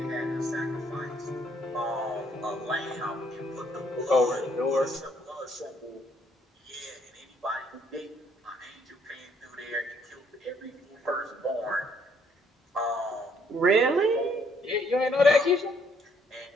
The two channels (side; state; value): both; normal; correlation 0.67